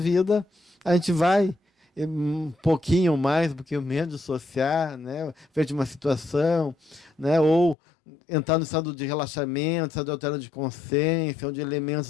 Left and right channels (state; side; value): drops out; right; at 7.8 s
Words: a gente vai um pouquinho mais, um pouquinho menos dissociar, né, frente a uma situação, né, ou entrar no estado de relaxamento, estado de altera de consciência, onde